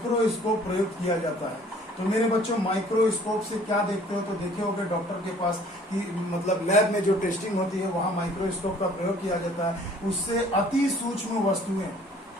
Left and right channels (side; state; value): both; normal; correlation 0.55